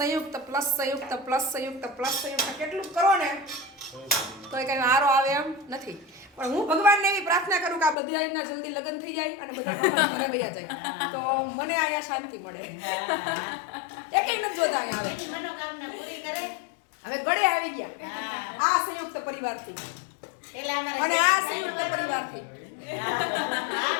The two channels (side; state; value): right; drops out; at 8.0 s